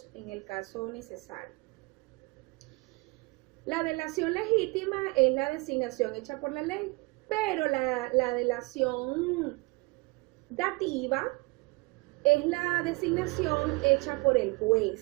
en el caso necesario. La delación legítima es la designación hecha por la ley, pero la delación dativa es la designación hecha por el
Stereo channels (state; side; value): quieter; left; 26.4 dB